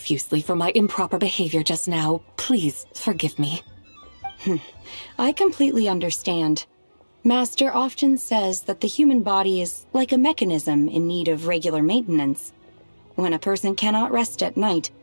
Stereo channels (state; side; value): inverted; both; correlation -1.00